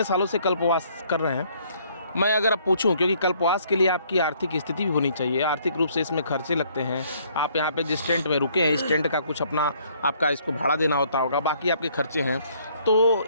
सालों से कल्पवास कर रहे हैं, मैं अगर आप पूछूं, क्योंकि कल्पवास के लिए आपकी आर्थिक स्थिति भी होनी चाहिए, आर्थिक रूप से इसमें खर्चे लगते हैं। आप यहाँ पे जिस टेंट में रुके हैं, इस टेंट का कुछ अपना आपका इसको भाड़ा देना होता होगा, बाकी आपके खर्चे हैं। तो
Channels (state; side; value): inverted; both; correlation -0.63